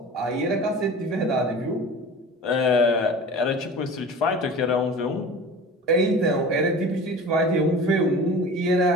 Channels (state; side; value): normal; both; correlation 0.37